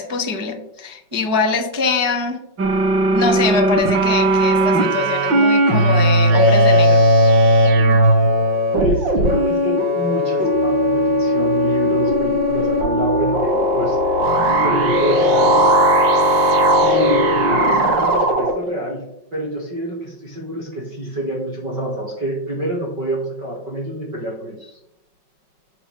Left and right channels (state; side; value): late; left; 5.4 ms